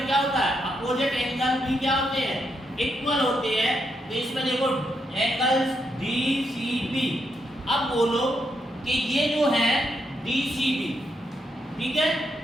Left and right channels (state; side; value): normal; both; correlation 0.80